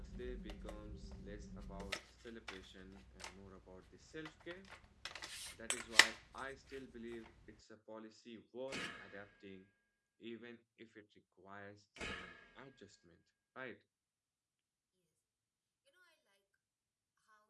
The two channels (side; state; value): both; identical; correlation 1.00